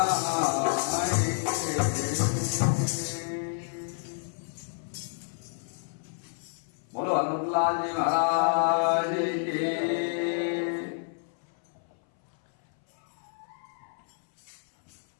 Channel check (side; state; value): right; silent; 58 dB below the other